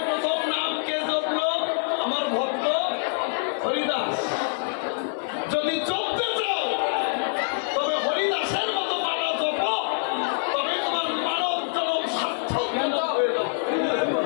প্রথম নাম কে জপলো? আমার ভক্ত হরিদাস। যদি জপতে চাও তবে হরিদাসের মতো মালা জপ, তবে তোমার মানব জনম সার্থক হয়ে যাবে।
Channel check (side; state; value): right; silent; digital silence